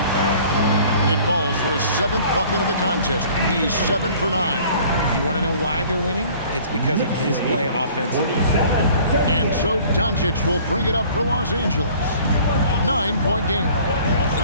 It falls for his 7th bucket of the contest. He's 7 for 9. You want to know why they're winning? It's because of his play offensively. And so Doncic will bring it up for Los Angeles. 9-point game.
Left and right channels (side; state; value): both; inverted; correlation -0.51